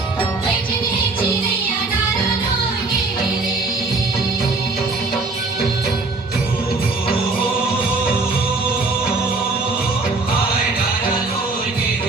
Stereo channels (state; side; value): quieter; left; 3.5 dB